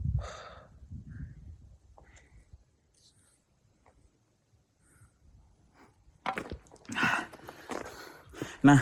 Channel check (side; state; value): both; identical; correlation 1.00